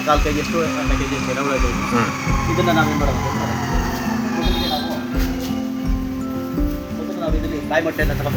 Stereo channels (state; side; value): identical; both; correlation 1.00